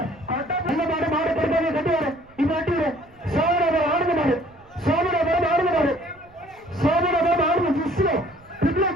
மாடு கட்டி வர இது வட்டி வர சோதனை ஆடுங்க மாடு, சோதனை ஆடுங்க மாடு, சோதனை ஆடுங்க ஜிஸ்லோ பிப்ல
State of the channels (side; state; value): right; noise; rumble, 29 dB below the sound